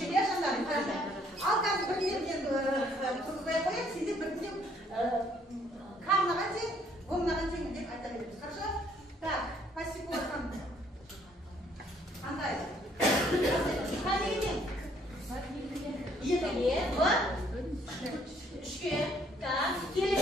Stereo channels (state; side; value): normal; both; correlation 0.64